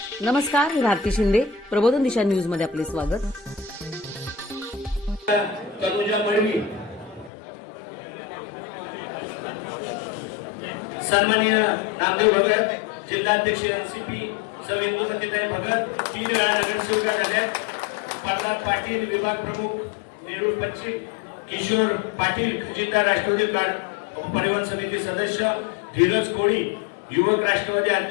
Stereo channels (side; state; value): right; drops out; at 7.3 s